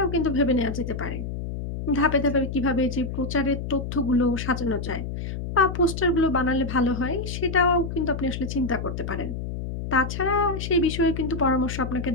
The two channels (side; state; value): left; noise; hum, 6 dB below the sound